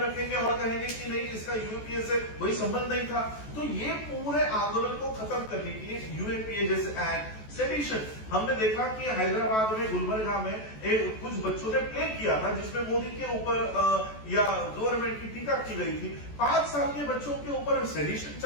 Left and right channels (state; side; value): late; right; 14 ms